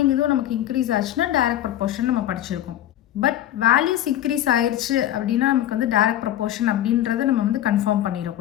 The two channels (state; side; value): quieter; right; 12.5 dB